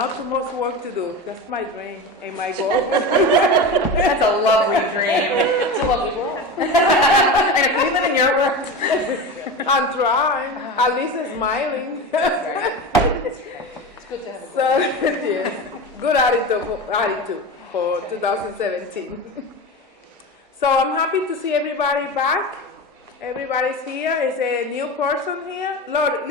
too much work to do. That's my dream and my goal. That's a lovely dream. It's a lovely world. And if we live in your world. I'm trying. At least smiling. It's good to have a goal. So, yes, good attitude for 2017. So I'm happy to see everybody back. Everybody's here. Is a new person here? Lord,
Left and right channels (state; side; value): normal; both; correlation 0.25